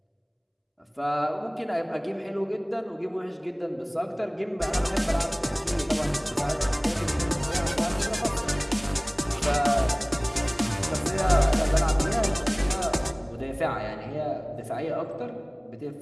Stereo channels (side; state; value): both; identical; correlation 1.00